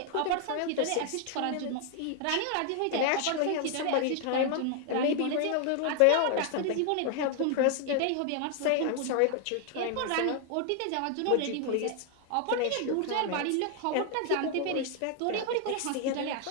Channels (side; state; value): both; different; correlation 0.00